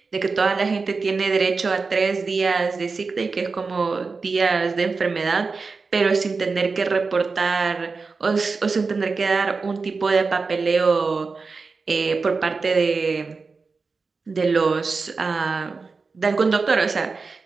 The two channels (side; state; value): left; quieter; 4.4 dB